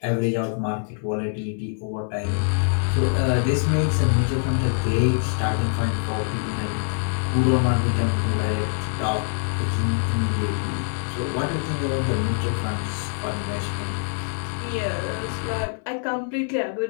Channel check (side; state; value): right; silent; 61 dB below the other